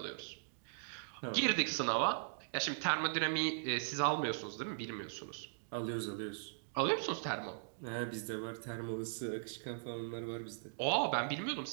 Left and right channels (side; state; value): left; silent; digital silence